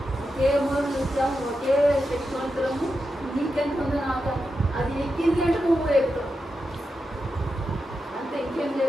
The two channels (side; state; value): both; normal; correlation 0.88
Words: ఒకే మూల నుంచి వచ్చాము, ఒకే శక్తివంతులము. నీకెంత ఉందో నాకు అది ఎక్కింది అంటే నువ్వు ఎక్కుతావు అంతే, ఇంకేం